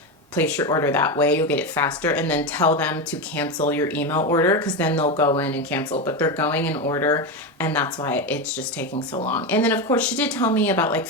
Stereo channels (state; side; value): normal; both; correlation 0.15